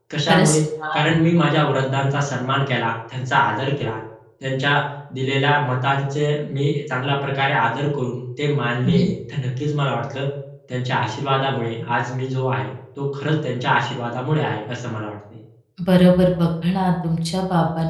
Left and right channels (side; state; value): both; identical; correlation 1.00